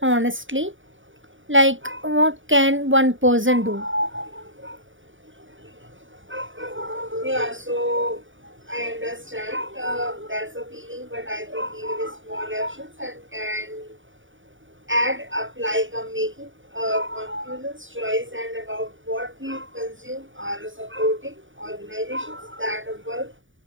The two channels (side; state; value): left; late; 0.57 ms